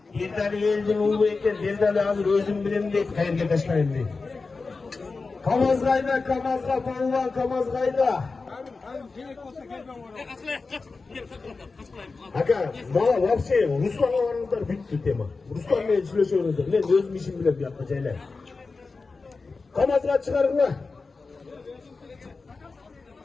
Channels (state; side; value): quieter; right; 4.1 dB